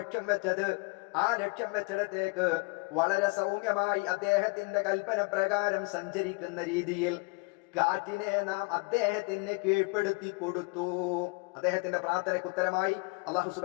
വെച്ചത് ആ ലക്ഷ്യം വെച്ചിടത്തേക്ക് വളരെ സൗമ്യമായി അദ്ദേഹത്തിന്റെ കൽപ്പന പ്രകാരം സഞ്ചരിക്കുന്ന രീതിയിൽ കാറ്റിനെ നാം അദ്ദേഹത്തിന് കീഴ്പ്പെടുത്തി കൊടുത്തു. അദ്ദേഹത്തിന്റെ പ്രാർത്ഥനയ്ക്ക് ഉത്തരമായി അല്ലാഹു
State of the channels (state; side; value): quieter; right; 29.2 dB